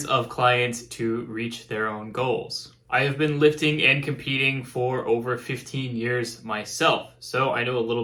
of clients to reach their own goals. I have been lifting and competing for over 15 years myself, so I know a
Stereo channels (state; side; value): identical; both; correlation 1.00